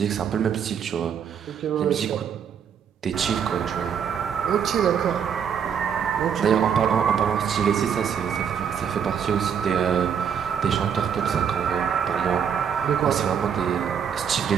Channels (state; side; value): quieter; left; 7.8 dB